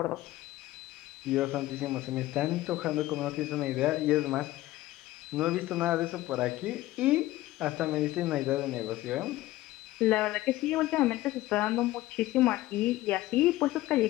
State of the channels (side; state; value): right; quieter; 16.6 dB